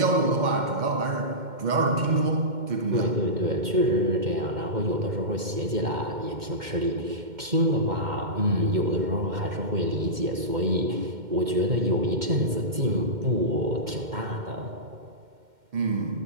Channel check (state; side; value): late; left; 2.1 ms